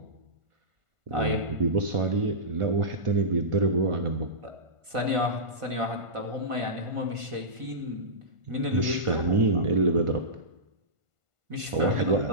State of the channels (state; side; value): late; left; 1.5 ms